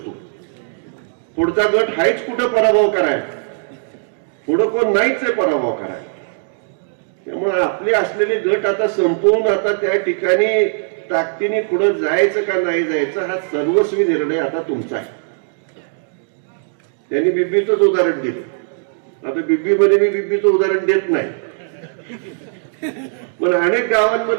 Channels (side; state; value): left; silent; digital silence